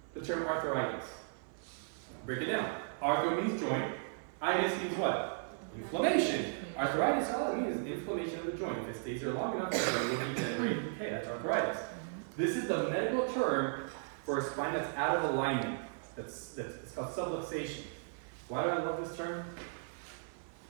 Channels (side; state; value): left; silent; 54 dB below the other